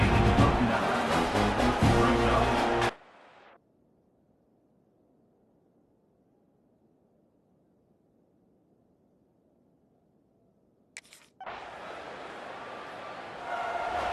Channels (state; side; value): identical; both; correlation 1.00